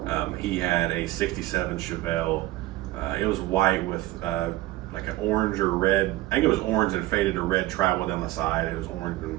He had a 67 Chevelle. It was white with like an orange or red, I think it was orange and faded to red travel down the side. It was orange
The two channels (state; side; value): quieter; left; 17.0 dB